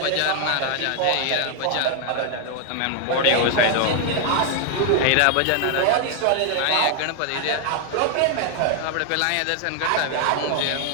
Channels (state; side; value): different; both; correlation 0.00